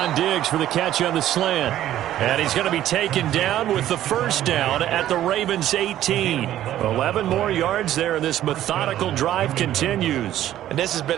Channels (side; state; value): left; quieter; 12.7 dB